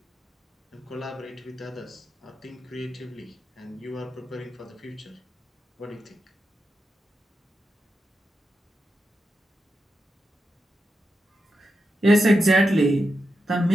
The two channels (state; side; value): normal; both; correlation 0.88